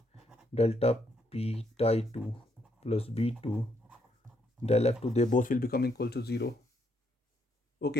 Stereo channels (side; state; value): both; normal; correlation 0.74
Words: delta P tie 2 plus B2 del F2, they both will become equal to 0.